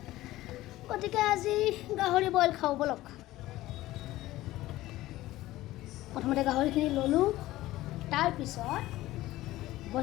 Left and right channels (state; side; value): quieter; right; 16.6 dB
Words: গতিকে আজি গাহৰি বইল খাওঁ ব'লক। প্ৰথমতে গাহৰিখিনি ল'লোঁ, তাৰপিছত